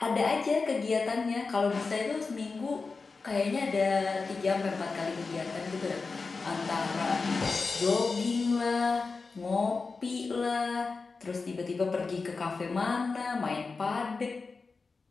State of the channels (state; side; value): quieter; right; 4.3 dB